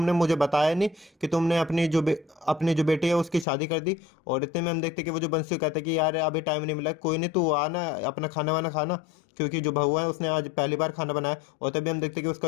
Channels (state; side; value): drops out; right; at 3.5 s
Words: मुझे बताया नहीं कि तुमने अपनी जो बेटी है उसकी शादी कर दी। और इतने में हम देखते हैं कि वो जो बंसी कहता है कि यार अभी टाइम नहीं मिला, कोई नहीं तू आना अपना खाना वाना खाना, क्योंकि जो बहू है उसने आज पहली बार खाना बनाया। और तभी हम देखते हैं कि